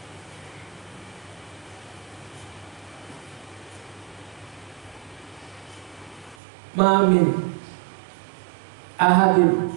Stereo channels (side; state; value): left; drops out; at 6.4 s